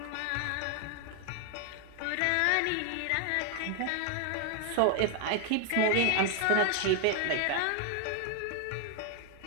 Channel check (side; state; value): both; different; correlation 0.00